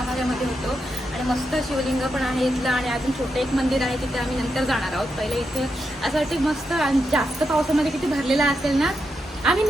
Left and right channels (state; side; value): normal; both; correlation 0.85